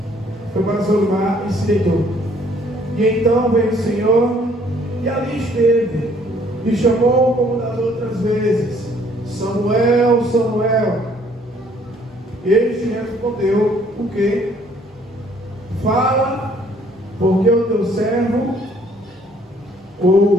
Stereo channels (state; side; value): normal; both; correlation 0.61